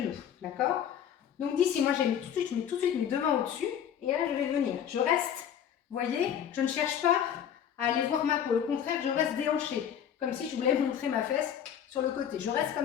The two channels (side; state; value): right; quieter; 9.1 dB